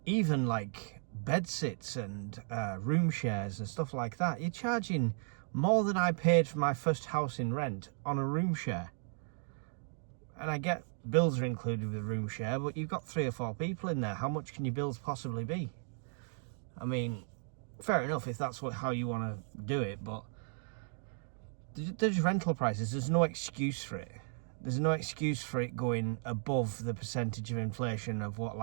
Even like bedsits and room shares and stuff like that, you're charging more than I paid for my first house in rent on a room share. And I get bills are included with the room share, but you've got 3 or 4 people in there. How much can your bills possibly be? I mean, fair enough if that's how you want to do it, but there's rental prices. There's no excuse for it. There's no excuse for it going above the percentage of inflation of what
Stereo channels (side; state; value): left; silent; 54 dB below the other